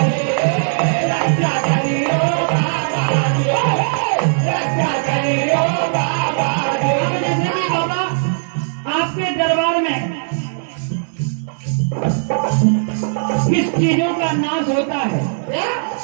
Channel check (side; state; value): left; silent; digital silence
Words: किस चीजों का नाश होता है,